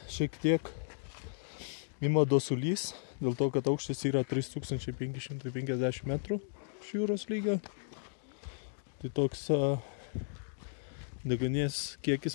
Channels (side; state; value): right; silent; digital silence